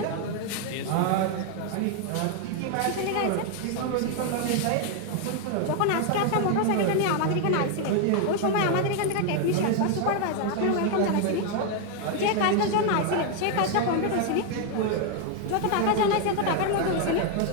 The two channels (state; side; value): different; both; correlation 0.00